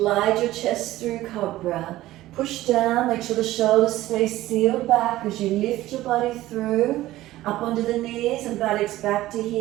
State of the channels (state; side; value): quieter; left; 15.9 dB